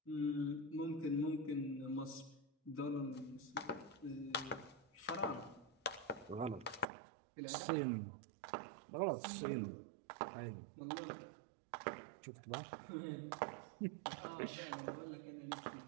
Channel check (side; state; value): left; drops out; at 6.9 s